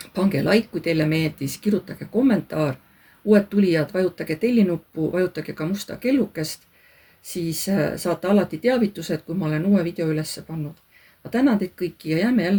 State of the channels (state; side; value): identical; both; correlation 1.00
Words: pange like, kui teile meeldis, kirjutage kommentaar. uued tulijad, vajutage tellinuppu, vajutage ka musta kellukest, siis saate alati teavitused, kui ma olen uue video üles pannud. ma tänan teid kõiki ja jääme